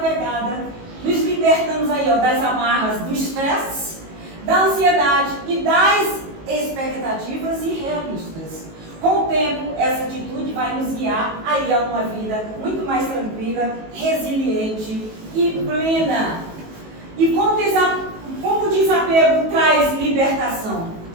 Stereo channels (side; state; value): left; late; 19 ms